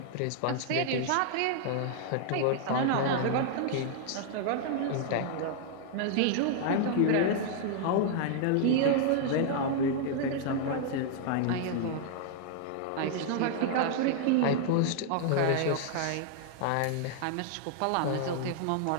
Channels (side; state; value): both; different; correlation -0.01